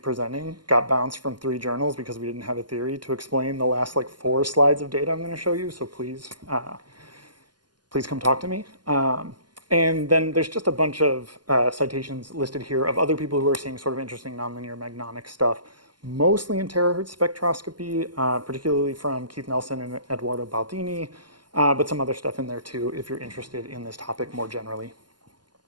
got bounced from 3 journals because we didn't have a theory to explain the last 4 slides of data I'm going to show you. So please, please come talk to me. And then there's just a bunch of citations listed here of other people who are seeing sort of interesting nonlinear magnonic stuff, mostly in terahertz spectroscopy, particularly from Keith Nelson and Eduardo Baldini, but some other stuff in there too if you're interested in this topic more generally.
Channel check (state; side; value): late; left; 0.71 ms